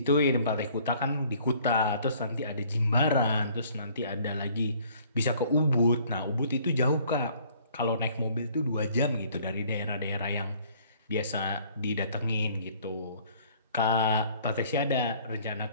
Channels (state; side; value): inverted; both; correlation -0.57